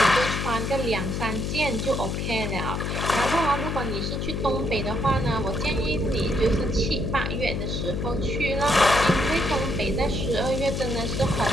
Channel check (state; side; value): noise; left; hum, 2 dB below the sound